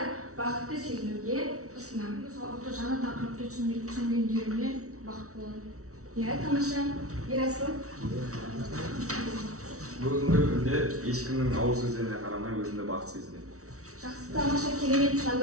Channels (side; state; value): left; late; 0.64 ms